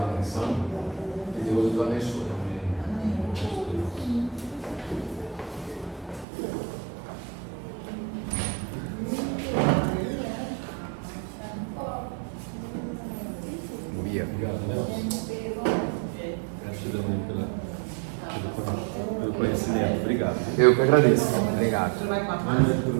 atenção. Que Deus os abençoe. Obrigado, Nelson. Gratidão pelo conhecimento. Obrigado. Eu que agradeço. Obrigado. Boa noite para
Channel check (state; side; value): drops out; left; at 6.2 s